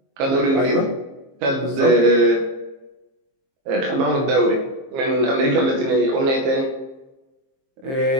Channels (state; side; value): late; left; 22 ms